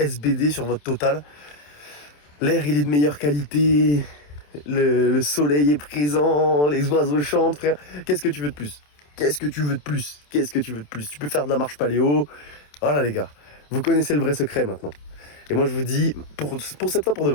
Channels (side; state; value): right; late; 27 ms